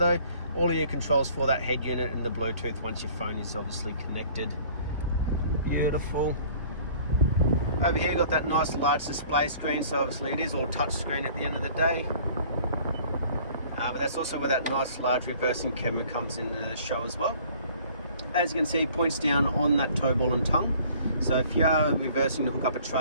all of your controls for that head unit and the Bluetooth once your phone is obviously connected. Beautiful. Over here, got that nice large display screen, so obviously it is all touch screen at the end of the day. But that's also where that nice large reversing camera comes into the show as well. As you can see, it points down on that toe ball and tongue. So if you are reversing to hook up a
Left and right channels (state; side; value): inverted; both; correlation -0.52